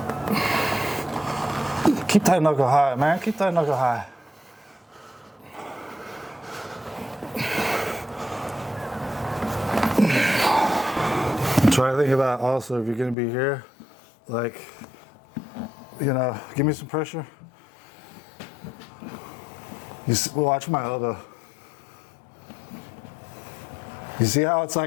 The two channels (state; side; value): drops out; right; at 13.2 s